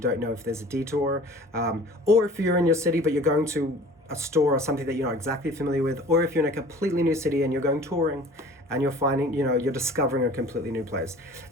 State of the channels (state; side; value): normal; both; correlation 0.46